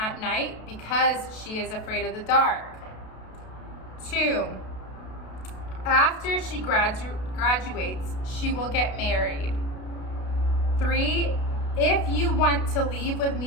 night because she is afraid of the dark. 2, after she graduates, she will get married. 3, if you want to leave with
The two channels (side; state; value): right; late; 32 ms